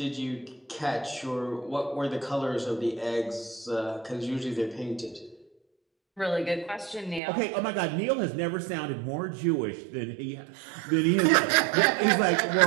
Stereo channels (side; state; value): left; drops out; at 7.2 s